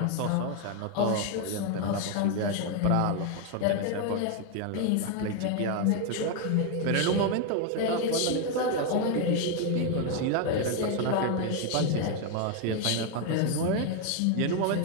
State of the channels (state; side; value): different; both; correlation 0.01